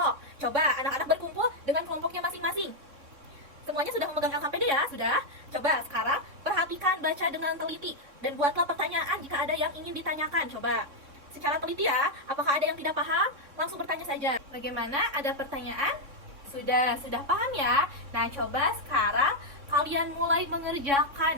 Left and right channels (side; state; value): left; late; 3.6 ms